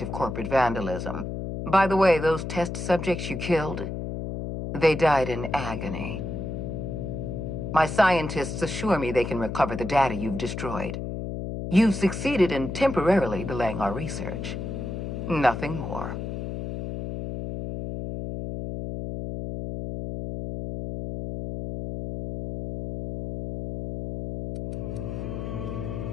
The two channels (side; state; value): left; noise; hum, 5 dB below the sound